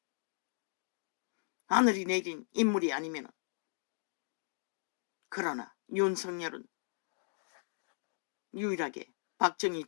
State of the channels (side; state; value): right; silent; digital silence